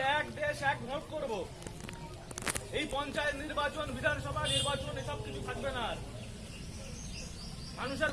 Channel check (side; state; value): both; identical; correlation 1.00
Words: এক দেশ এক ভোট করব, এই পঞ্চায়েত নির্বাচন বিধানসভা নির্বাচন এসব কিছু থাকবে না। মানুষের